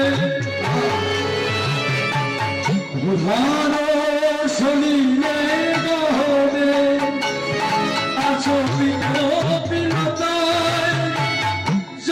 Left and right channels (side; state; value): both; identical; correlation 1.00